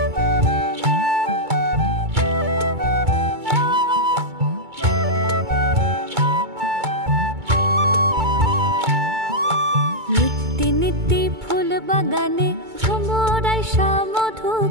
নিত্যি নিত্যি ফুল বাগানে ভ্রমরায় মধু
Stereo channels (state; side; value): late; left; 2.2 ms